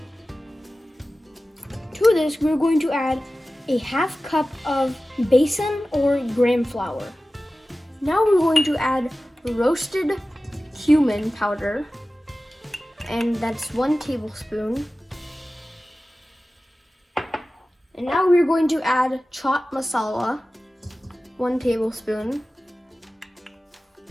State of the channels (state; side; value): normal; both; correlation 0.96